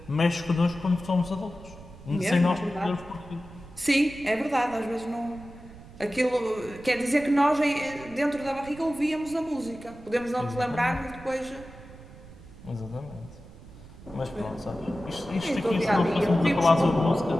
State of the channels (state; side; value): noise; right; rumble, 18 dB below the sound